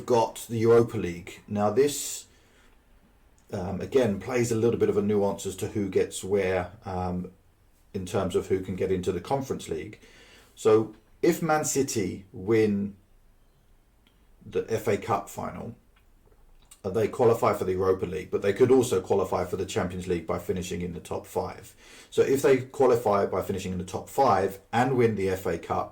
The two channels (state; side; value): identical; both; correlation 1.00